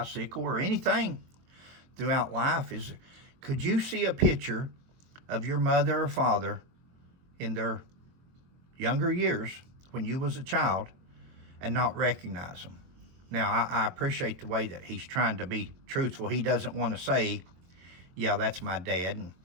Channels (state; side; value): late; left; 23 ms